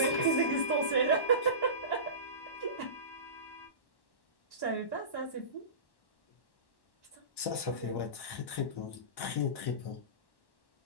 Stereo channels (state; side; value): late; right; 1.1 ms